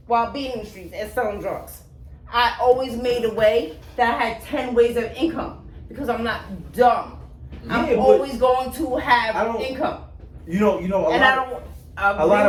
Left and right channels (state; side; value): identical; both; correlation 1.00